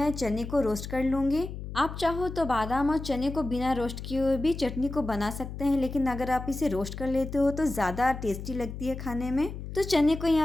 चने को रोस्ट कर लूँगी। आप चाहो तो बादाम और चने को बिना रोस्ट किए हुए भी चटनी को बना सकते हैं, लेकिन अगर आप इसे रोस्ट कर लेते हो तो ज़्यादा टेस्टी लगती है खाने में। तो चने को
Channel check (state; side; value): noise; left; hum, 9 dB below the sound